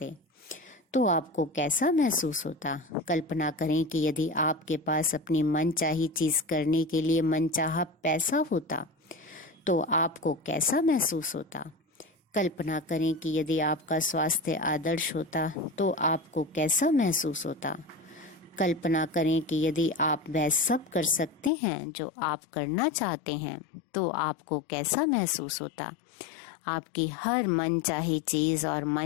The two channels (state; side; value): drops out; right; at 21.5 s